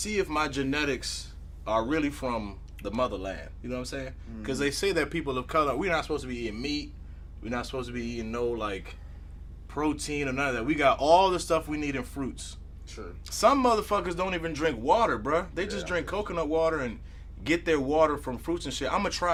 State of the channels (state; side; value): identical; both; correlation 1.00